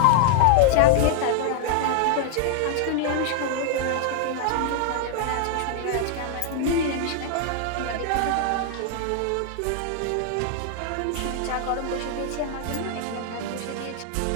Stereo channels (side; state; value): both; different; correlation 0.00